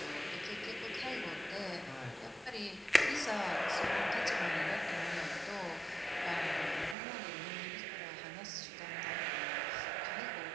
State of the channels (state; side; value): drops out; left; at 7.0 s